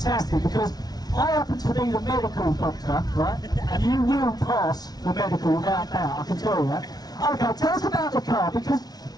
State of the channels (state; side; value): late; right; 0.19 ms